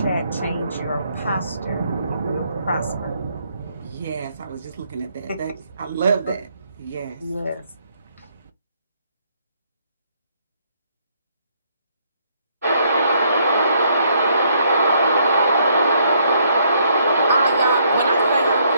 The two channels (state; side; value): inverted; both; correlation -0.69